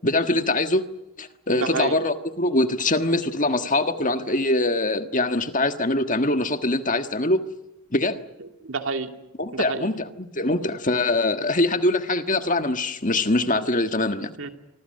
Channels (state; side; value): normal; both; correlation 0.17